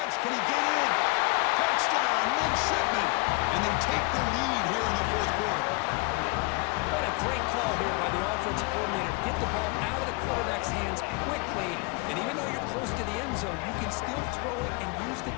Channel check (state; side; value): quieter; right; 28.4 dB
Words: Can he get in? Touchdown, Midshipmen. And they take the lead here in the 4th quarter. What a great call here by the offensive coordinator. Get the ball out of the quarterback's hands quickly. And even though you're close to the end zone, you can still throw it and use the